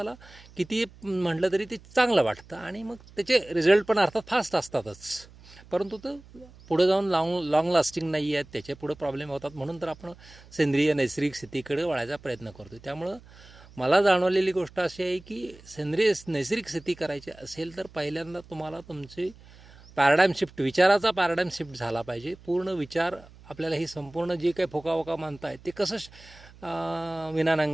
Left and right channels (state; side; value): noise; right; hum, 22 dB below the sound